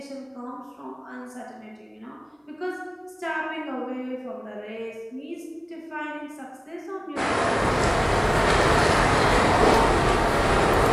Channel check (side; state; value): both; identical; correlation 1.00